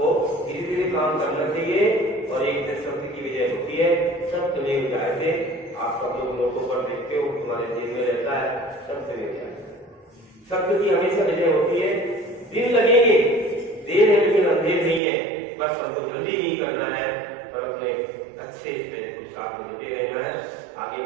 धीरे धीरे काम करना चाहिए और एक दिन सत्य की विजय होती है। सत्य में जायते, आप सब लोग नोटों पर देखते हो, तुम्हारे जेब में रहता है, सत्य में जाए। सत्य की हमेशा विजय होती है। दिन लगेंगे, देर है लेकिन अंधेर नहीं है। बस हमको जल्दी नहीं करना है और अपने अच्छे पुरुषार्थ में जुटे रहना है, आगे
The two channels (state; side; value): drops out; left; at 15.0 s